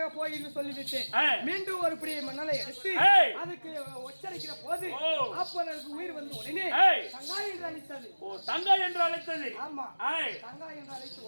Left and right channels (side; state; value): both; inverted; correlation -1.00